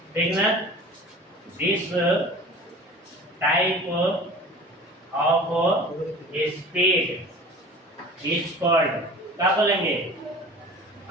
ठीक ना। This type of speed is called, क्या बोलेंगे?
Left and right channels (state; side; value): normal; both; correlation 0.41